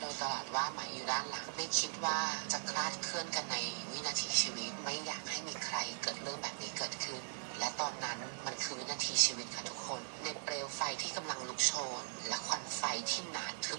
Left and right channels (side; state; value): left; silent; digital silence